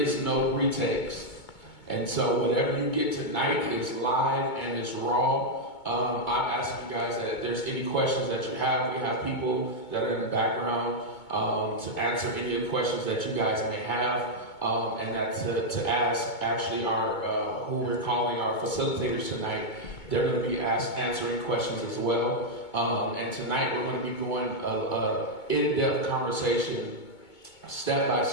no retakes. And so whatever you get tonight is live and it's raw. I'm asking you guys that if there's any questions that you have, we have people that are in the background to answer any of the questions that you guys may have, and that to ask actually our who we're calling our facilitators tonight. They're going to be answering questions as well. And tonight we're going to be going an in-depth conversation, step by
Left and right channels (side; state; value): right; late; 2.2 ms